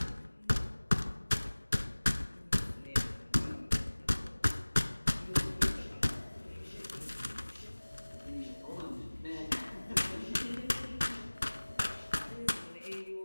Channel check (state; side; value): inverted; both; correlation -1.00